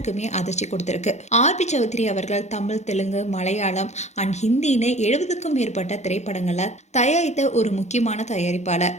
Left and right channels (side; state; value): right; late; 0.33 ms